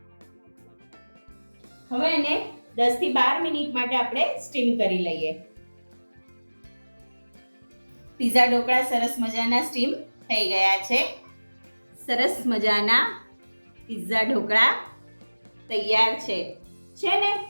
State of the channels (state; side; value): inverted; both; correlation -1.00